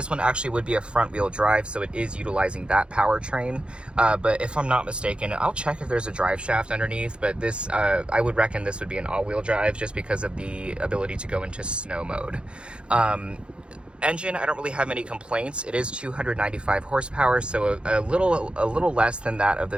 one actually would be a front wheel drive, so it is utilizing that powertrain. But if I'm not mistaken, I'll check if there's a drive shaft underneath, but this, I would reckon this would be an all-wheel drive just because of the ability to go into snow mode. Engine, I don't really have any complaints. It is 295 horsepower, so a little less than that of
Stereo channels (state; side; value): late; left; 0.056 ms